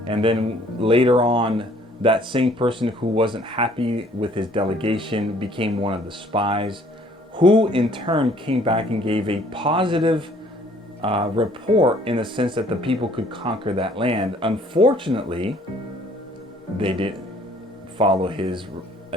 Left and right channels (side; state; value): both; normal; correlation 0.59